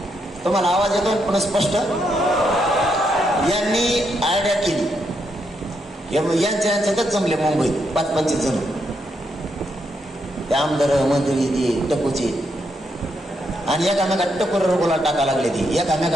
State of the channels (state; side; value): normal; both; correlation 0.79